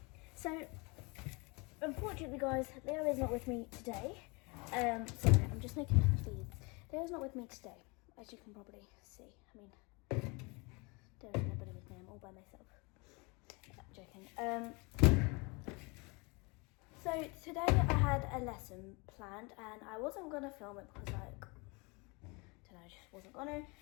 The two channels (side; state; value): right; quieter; 28.6 dB